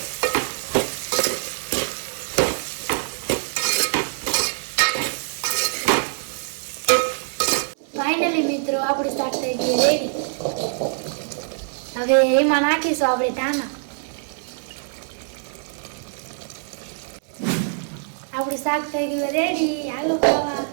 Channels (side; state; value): left; silent; digital silence